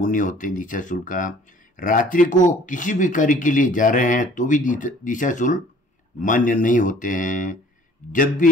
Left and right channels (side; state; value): both; normal; correlation 0.54